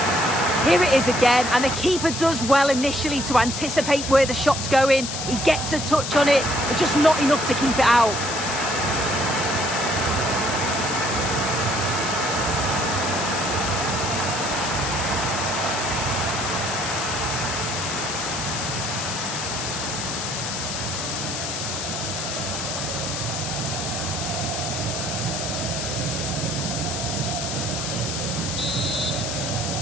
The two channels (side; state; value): left; noise; hiss, 4 dB below the sound